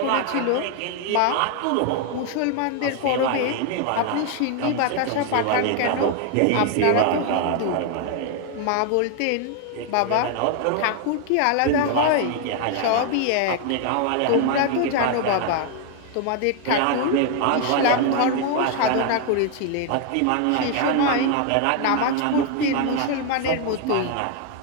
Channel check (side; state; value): both; different; correlation 0.01